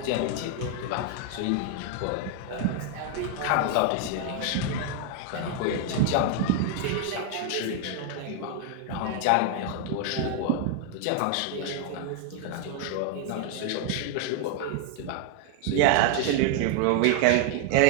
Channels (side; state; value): both; different; correlation 0.01